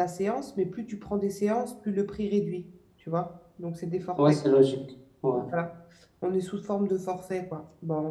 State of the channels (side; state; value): both; identical; correlation 1.00